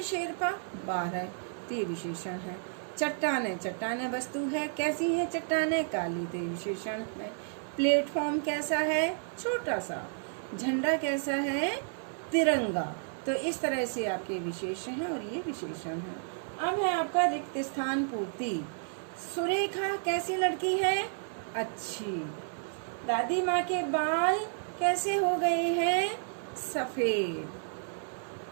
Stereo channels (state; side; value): silent; left; 57 dB below the other